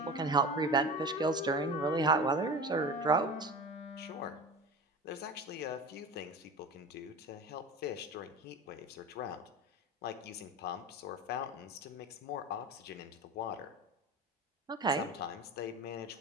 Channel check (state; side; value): normal; both; correlation 0.33